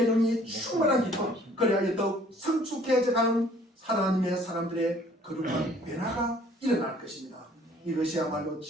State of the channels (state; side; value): normal; both; correlation 0.57